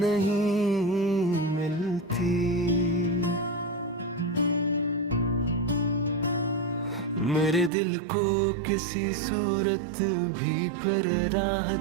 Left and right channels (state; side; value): drops out; left; at 7.7 s